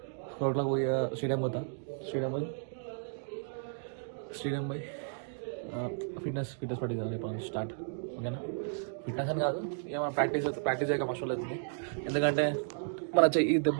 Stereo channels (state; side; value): silent; left; digital silence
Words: పోయి స్టేడియం పోతా. స్టేడియం పోయి ఫిట్నెస్ పట్టింది కదా రేపు స్టార్ట్. ఓకేనా? ఫిట్నెస్ అని కాదు, ఏమైనా ప్రాక్టీస్ చేయక మస్తు అవుతుంది. ఎందుకంటే మన చెయ్యి దెబ్బ